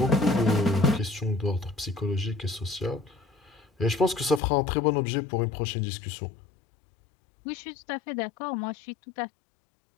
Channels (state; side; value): drops out; right; at 4.4 s